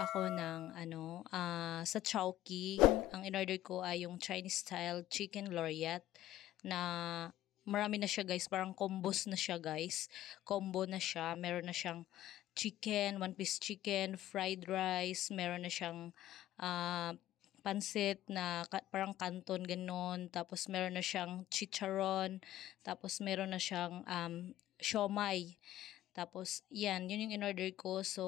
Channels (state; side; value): quieter; right; 13.5 dB